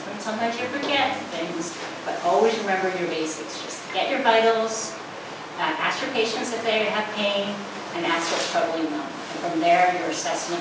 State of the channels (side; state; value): both; identical; correlation 1.00